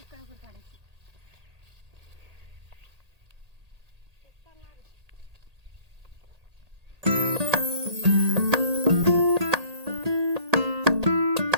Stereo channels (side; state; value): left; late; 1.8 ms